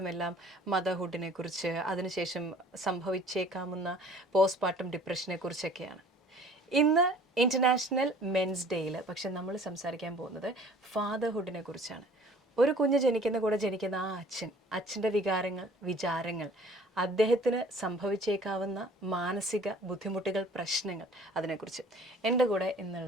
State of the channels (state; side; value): normal; both; correlation 0.51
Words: മദർഹുഡിനെ കുറിച്ച് അതിനുശേഷം സംഭവിച്ചേക്കാവുന്ന പോസ്റ്റ്പാർട്ടം ഡിപ്രഷനെ കുറിച്ചൊക്കെയാണ്. ഇന്ന് ഇൻ്റർനാഷണൽ മെൻസ് ഡേയിൽ പക്ഷെ നമ്മൾ സംസാരിക്കാൻ പോകുന്നത് ഫാദർഹുഡിനെ കുറിച്ചാണ്. ഒരു കുഞ്ഞ് ജനിക്കുന്ന കൂടെ ജനിക്കുന്ന ആ അച്ഛൻ്റെ വികാരങ്ങൾ വിചാരങ്ങൾ അദ്ദേഹത്തിന് സംഭവിച്ചേക്കാവുന്ന മാനസിക ബുദ്ധിമുട്ടുകൾ പ്രശ്നങ്ങൾ അതിനെക്കുറിച്ച് എൻ്റെ കൂടെ